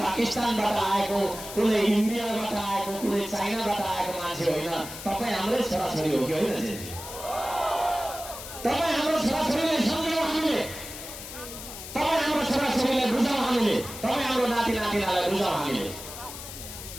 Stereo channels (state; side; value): noise; left; hiss, 11 dB below the sound